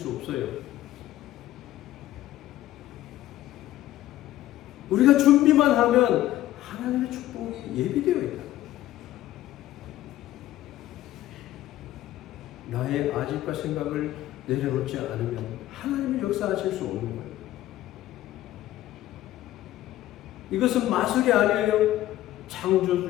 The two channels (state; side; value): quieter; right; 14.3 dB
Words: 없어요. 우리가 준비만 하면 하나님의 축복이 예비되어 있다. 나의 아집과 생각을 내려놓지 않으면 하나님의 역사하실 수 없는 거예요. 이것은 마술이 아니에요.